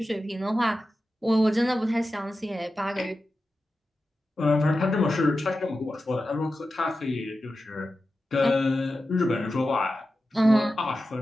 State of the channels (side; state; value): both; normal; correlation 0.92